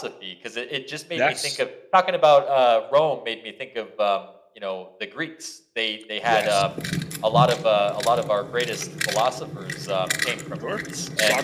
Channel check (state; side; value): identical; both; correlation 1.00